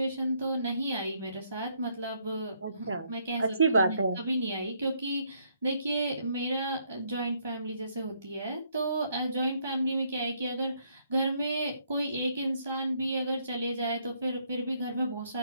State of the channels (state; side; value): inverted; both; correlation -0.71